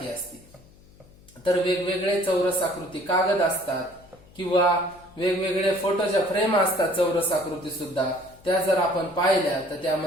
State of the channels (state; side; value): noise; left; hum, 26 dB below the sound